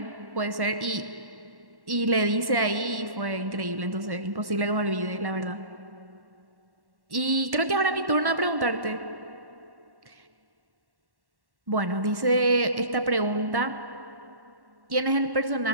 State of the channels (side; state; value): left; late; 1.1 ms